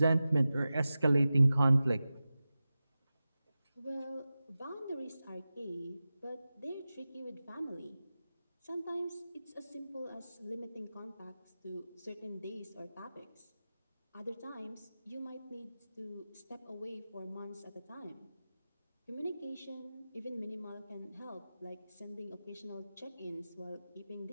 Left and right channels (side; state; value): both; inverted; correlation -0.95